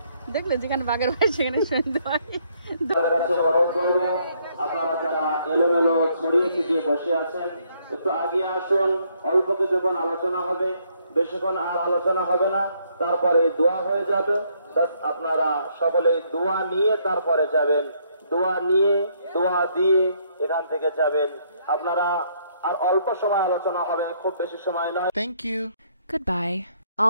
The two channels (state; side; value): inverted; both; correlation -0.69